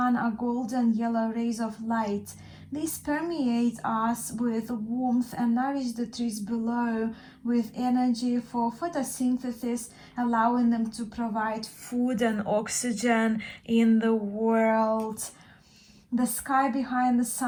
are golden yellow rays of light. These permeate us with warmth and nourish the trees below with energy for photosynthesis, allowing them to provide food and oxygen in the world. The sky behind the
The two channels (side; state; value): both; identical; correlation 1.00